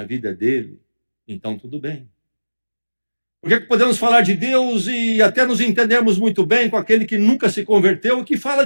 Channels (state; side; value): inverted; both; correlation -1.00